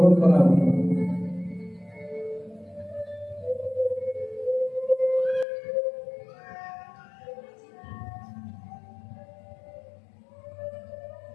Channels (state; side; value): drops out; right; at 5.5 s